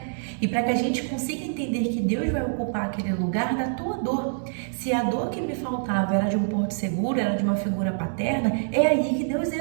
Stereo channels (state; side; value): silent; left; digital silence